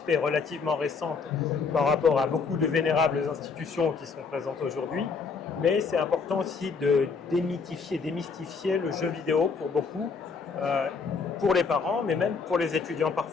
est relativement récente par rapport à beaucoup de vénérables institutions qui sont présentes aujourd'hui. Mais c'est important aussi de démystifier le jeu vidéo pour beaucoup, pour les parents, mais même pour les étudiants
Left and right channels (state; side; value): quieter; right; 5.1 dB